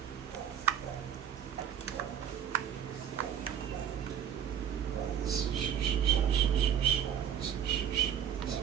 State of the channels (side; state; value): left; quieter; 9.2 dB